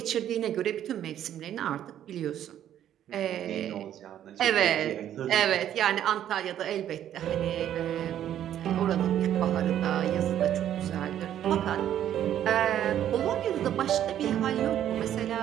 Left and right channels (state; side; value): quieter; left; 10.9 dB